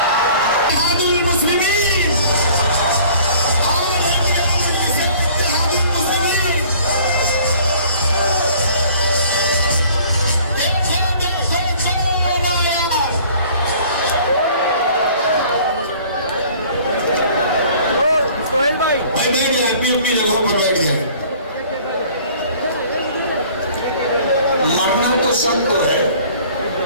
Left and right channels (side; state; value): both; inverted; correlation -0.52